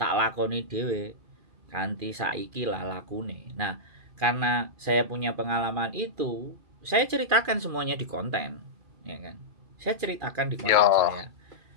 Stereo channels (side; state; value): left; late; 2.4 ms